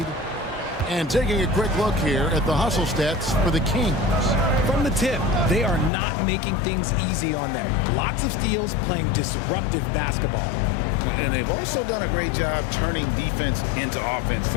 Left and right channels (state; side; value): drops out; right; at 5.9 s